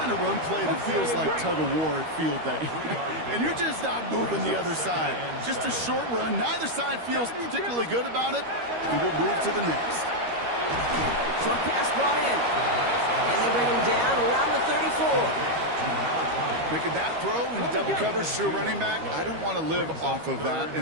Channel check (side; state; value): left; late; 13 ms